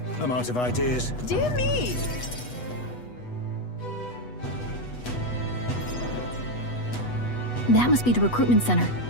I'm out of ideas. Dear me! That must be the recruitment center.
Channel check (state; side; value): late; right; 8.2 ms